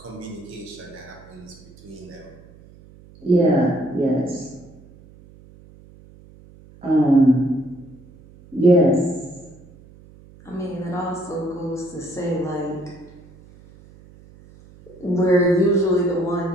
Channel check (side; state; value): right; noise; hum, 23 dB below the sound